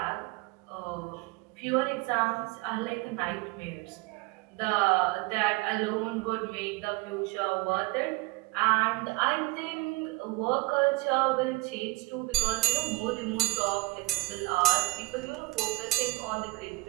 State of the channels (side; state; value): left; quieter; 22.3 dB